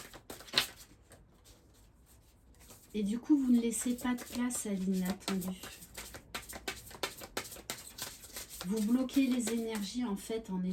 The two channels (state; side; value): identical; both; correlation 1.00